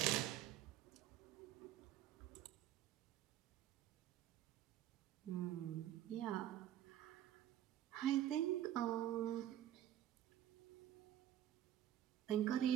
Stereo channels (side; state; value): left; quieter; 12.0 dB